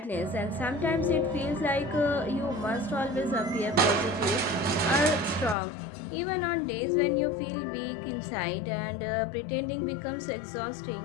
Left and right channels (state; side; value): drops out; right; at 5.6 s